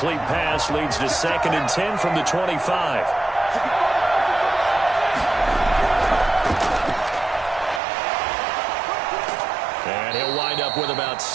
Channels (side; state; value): left; drops out; at 7.8 s